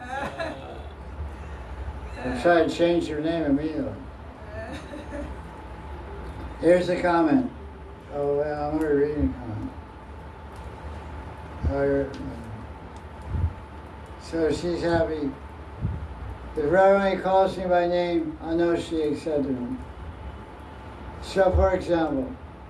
I'll try to change your name immediately. Here's the comment. Oh, well, I'm already reading a comment. So she's happy. If Radharani calls me by name, I know she accepted me. So, for example,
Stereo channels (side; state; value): both; identical; correlation 1.00